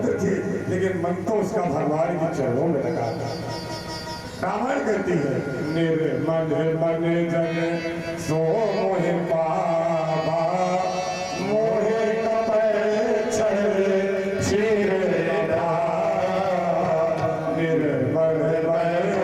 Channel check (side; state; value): both; identical; correlation 1.00